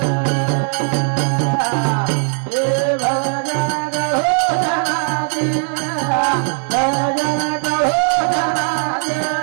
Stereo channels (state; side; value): silent; left; 55 dB below the other